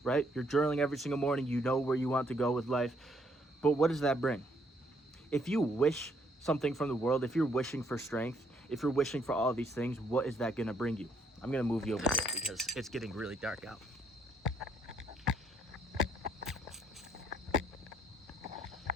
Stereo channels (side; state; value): both; normal; correlation 0.69